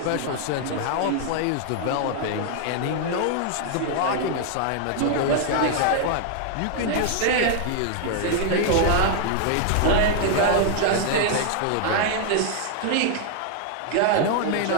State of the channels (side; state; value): both; different; correlation 0.00